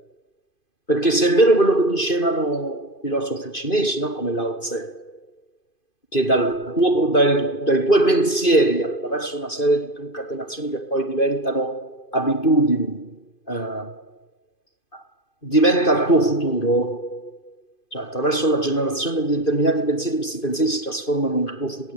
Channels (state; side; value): late; right; 2.5 ms